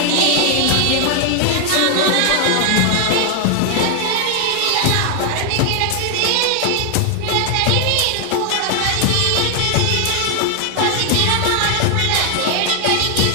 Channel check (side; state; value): both; different; correlation 0.00